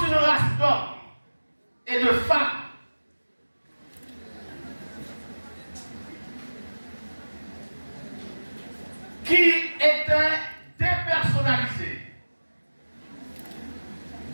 une race d'hommes et de femmes qui étaient dépersonnalisés,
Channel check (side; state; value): both; inverted; correlation -1.00